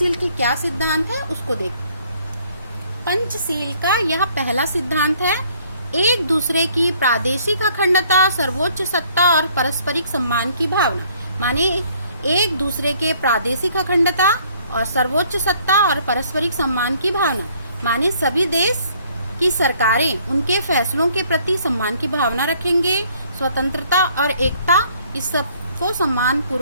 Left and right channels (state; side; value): inverted; both; correlation -0.62